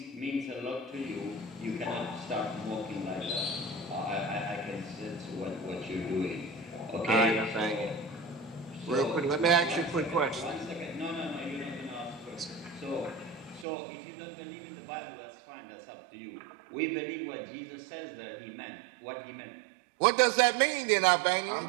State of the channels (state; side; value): drops out; left; at 13.7 s